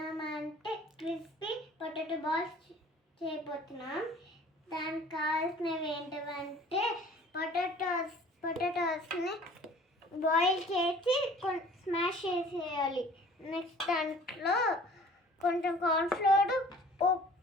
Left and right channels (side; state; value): both; normal; correlation 0.49